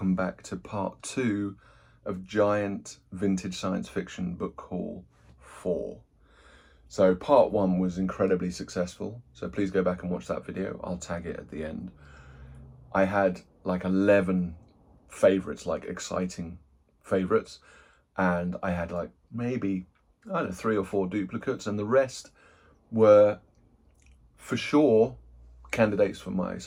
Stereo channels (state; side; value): identical; both; correlation 1.00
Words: back to part 2 of Giant Vintage Science Fiction Book Haul 4. So part 1 was incredibly successful, so please go back and watch that video. I'll tag it at the end. I had like 11 favourites, like exciting favourites, and I had like maybe, I don't know, 3 or 4 duplicates, and the rest were for sure candidates for my